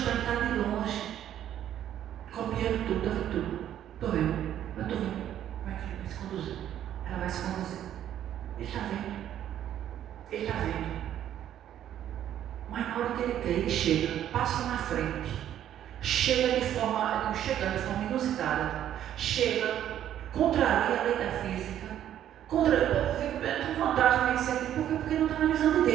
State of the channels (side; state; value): left; quieter; 11.0 dB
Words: de longe, copiando tudo, está vendo tudo? Estou vendo, eu estou vendo. Como é que ele vai se conduzir? Ela vai se conduzir. Ele está vendo. Mas na hora que ele quer, ele chega, passa na frente. Chega de forma inusitada, contraria a lei da física, tem vantagem nesse sentido, porque não está na visão de